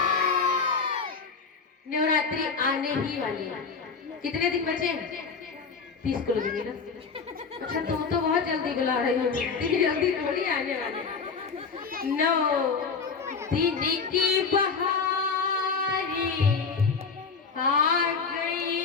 नवरात्रि आने ही वाली है, कितने दिन बचे हैं? 30 को लगेगी ना। अच्छा तुम तो बहुत जल्दी बुला रही हो, इतनी जल्दी थोड़ी आने वाले। 9 दिन की बहारी आ गई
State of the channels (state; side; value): quieter; right; 5.2 dB